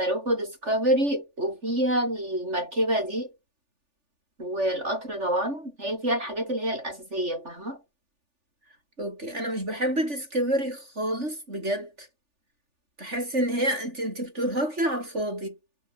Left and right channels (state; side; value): late; left; 3.4 ms